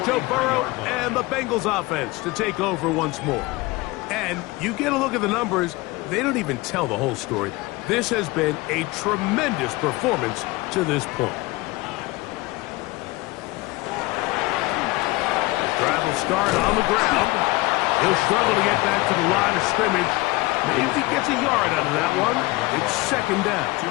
Joe Burrow and the Bengals offense to take over once more. And you get a look at the numbers, they don't even tell the whole story. This has been a tremendous performance to this point. Drive will start on the ground. He'll struggle to get back to the line of scrimmage. Maybe gets a yard out of that one. It's second down. 2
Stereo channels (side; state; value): right; quieter; 21.7 dB